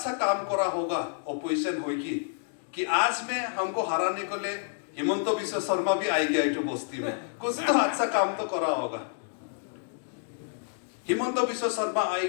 काम करा होगा, ऑपोजिशन होगी कि आज में हमको हराने को ले हिमंत बिश्व शर्मा भी आई गया इटू बस्ती में, कुछ तो अच्छा काम तो करा होगा। हिमंत बिश्व शर्मा आई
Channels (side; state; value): right; silent; digital silence